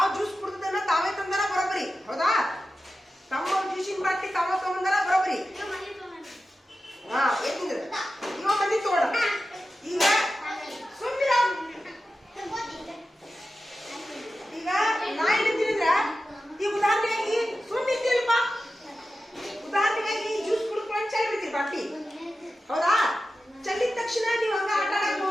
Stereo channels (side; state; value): both; normal; correlation 0.93